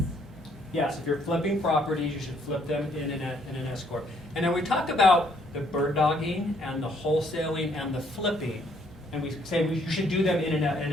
Yes, if you're flipping properties, you should flip them in an S corp. And then we talk about the bird dogging and the wholesaling and the flipping, and we say you should do them in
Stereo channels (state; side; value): normal; both; correlation 0.67